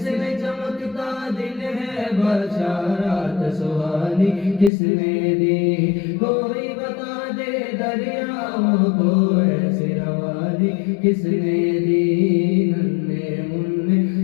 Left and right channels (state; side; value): drops out; right; at 4.7 s